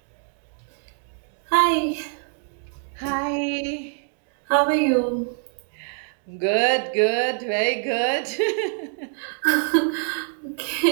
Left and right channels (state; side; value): silent; left; 62 dB below the other